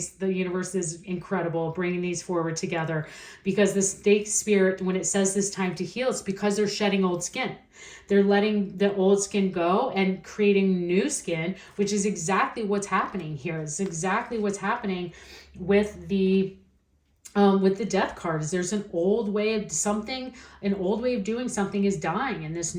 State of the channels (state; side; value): identical; both; correlation 1.00